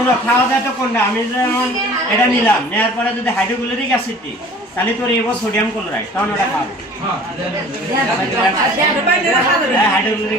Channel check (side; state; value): both; normal; correlation 0.47